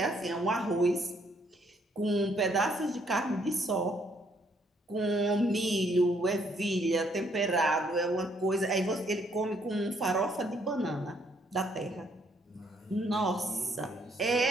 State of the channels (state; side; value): normal; both; correlation 0.69